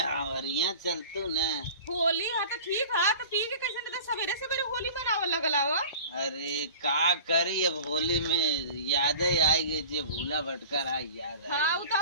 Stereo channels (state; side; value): inverted; both; correlation -0.40